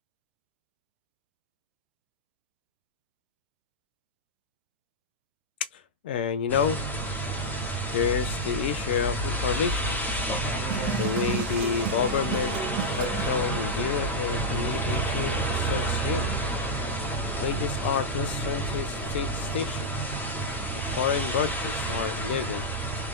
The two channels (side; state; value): both; normal; correlation -0.05